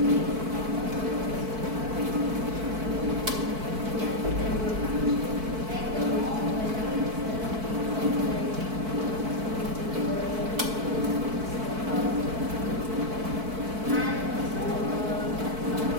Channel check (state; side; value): late; left; 4.5 ms